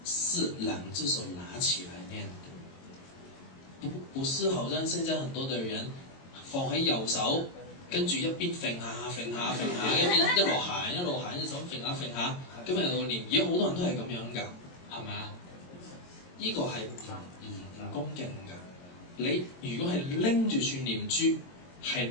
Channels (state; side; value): late; right; 22 ms